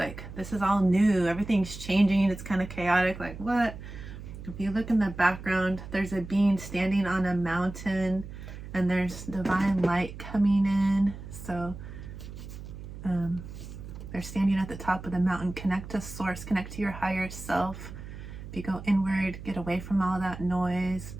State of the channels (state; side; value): noise; right; hum, 12 dB below the sound